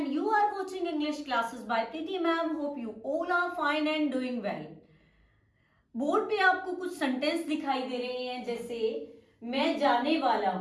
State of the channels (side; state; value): both; identical; correlation 1.00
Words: you are watching English classes by Preeti ma'am. Hope you all are fine and doing well. Board पे आपको कुछ sentence दिखाई दे रहे हैं, जैसे मैं जाने वाला